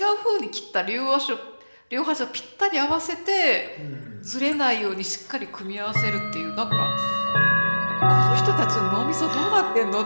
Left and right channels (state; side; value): inverted; both; correlation -1.00